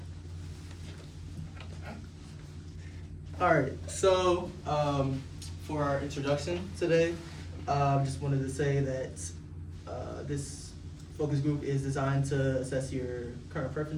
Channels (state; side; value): identical; both; correlation 1.00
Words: all. All right, so for our introduction today, just wanted to say that this focus group is designed to assess your current